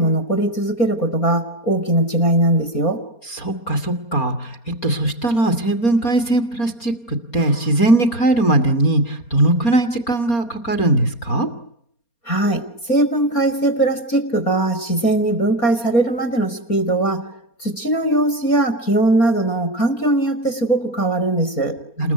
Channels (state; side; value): late; right; 4.3 ms